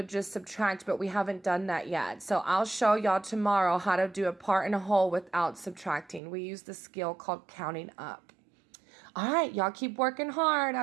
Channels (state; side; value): drops out; left; at 6.2 s